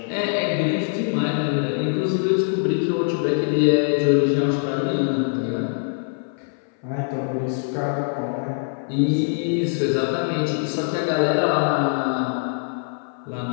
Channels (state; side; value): silent; right; 58 dB below the other